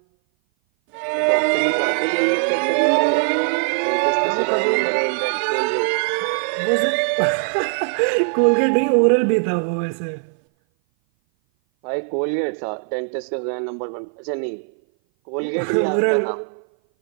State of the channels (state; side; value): silent; left; 58 dB below the other